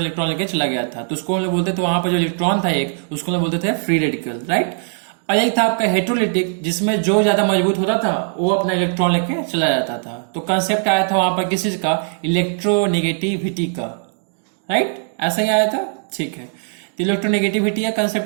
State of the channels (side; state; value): left; silent; digital silence